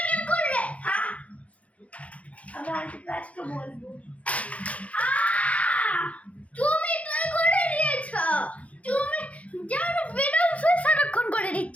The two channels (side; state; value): right; late; 0.065 ms